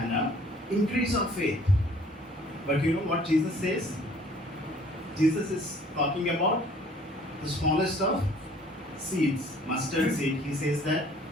increase our faith. But you know what Jesus says? Jesus is talking about the smallest of seeds, mustard seed. He says that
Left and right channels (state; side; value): normal; both; correlation 0.55